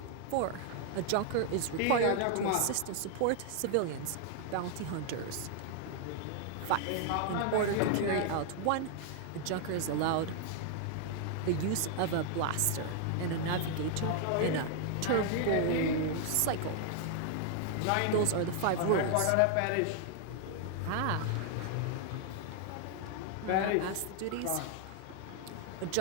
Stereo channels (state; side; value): different; both; correlation 0.00